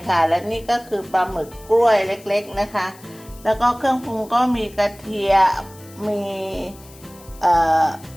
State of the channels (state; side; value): noise; left; hiss, 23 dB below the sound